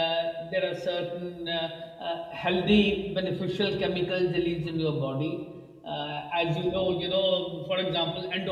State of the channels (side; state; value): both; identical; correlation 1.00